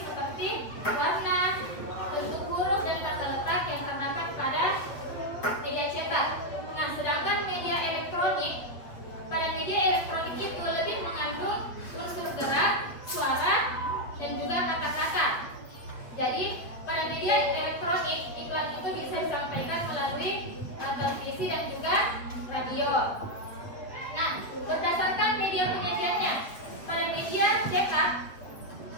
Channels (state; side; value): late; right; 7.8 ms